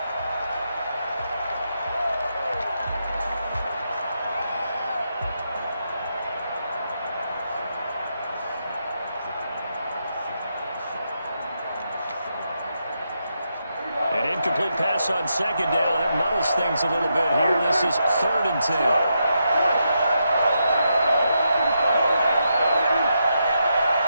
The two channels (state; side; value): inverted; both; correlation -0.83